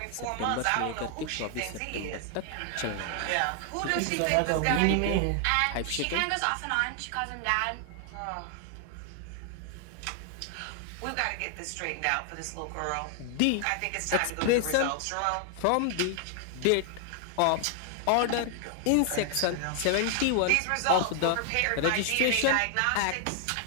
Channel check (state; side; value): different; both; correlation 0.00